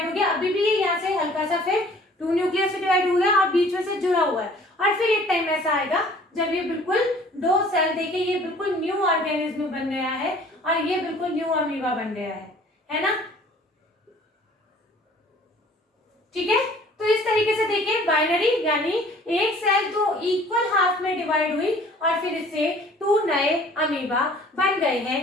हो गया। अभी भी ये यहाँ से हल्का सा फिर टू न्यूक्लियस में डिवाइड हो गया और बीच में से जुड़ा हुआ है। और फिर एक टाइम ऐसा आएगा जब ये बिल्कुल दो सेल, देखिए ये बिल्कुल न्यू ऑर्गेनिज्म बन गया है और ये बिल्कुल न्यू अमीबा बन गया है ना, ठीक है। तो इस तरीके से देखिए बाइनरी यानी एक सेल तो इक्वल हाफ में डिवाइड हुई और फिर इससे टू नए अमीबा बन गए हैं,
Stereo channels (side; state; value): both; normal; correlation 0.52